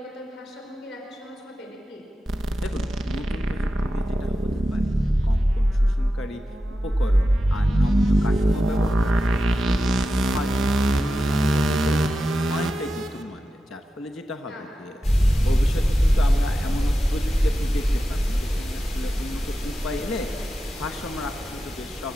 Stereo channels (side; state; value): both; normal; correlation 0.91